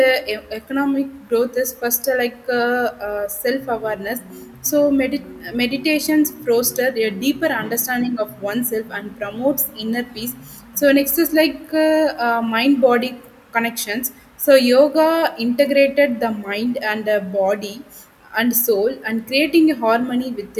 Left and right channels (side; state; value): both; identical; correlation 1.00